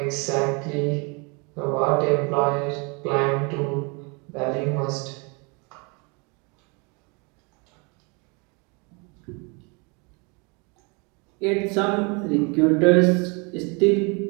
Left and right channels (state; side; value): quieter; left; 31.5 dB